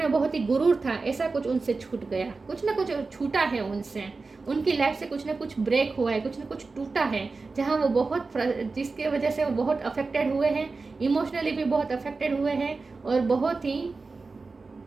बहुत ही गुरूर था, ऐसा कुछ उनसे छूट गया। कुछ ना कुछ छूटा है उनसे, उनकी लाइफ से कुछ ना कुछ ब्रेक हुआ है, कुछ ना कुछ टूटा है, जहाँ वो बहुत जिसके वजह से वो बहुत अफेक्टेड हुए हैं, इमोशनली भी बहुत अफेक्टेड हुए हैं और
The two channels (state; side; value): quieter; left; 4.0 dB